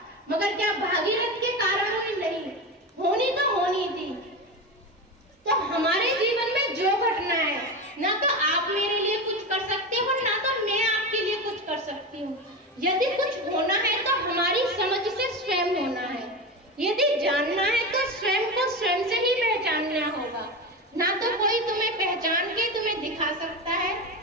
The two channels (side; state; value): both; normal; correlation 0.21